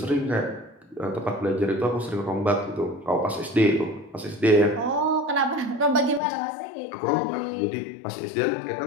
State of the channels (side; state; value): right; drops out; at 6.2 s